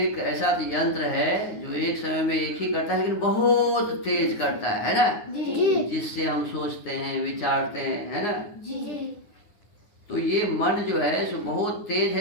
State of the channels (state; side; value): late; right; 9.6 ms